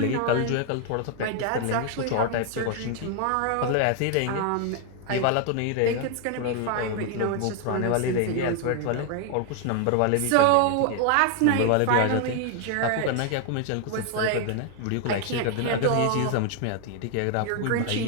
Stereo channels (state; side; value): different; both; correlation 0.01